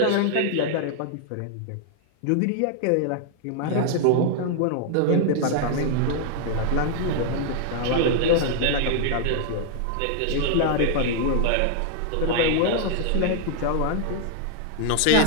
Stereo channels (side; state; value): both; different; correlation 0.00